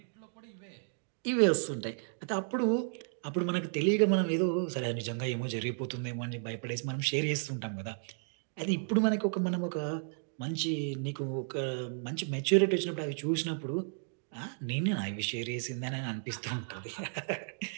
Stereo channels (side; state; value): left; silent; 55 dB below the other